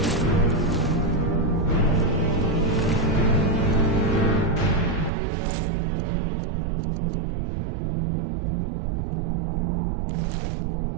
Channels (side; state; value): left; drops out; at 5.1 s